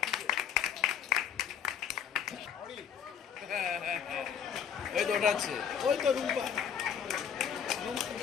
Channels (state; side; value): quieter; right; 8.1 dB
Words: ওই তো ওটা আছে, ওই তো রুম্পা।